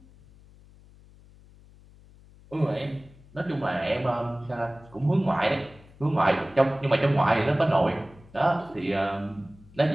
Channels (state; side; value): noise; left; hum, 24 dB below the sound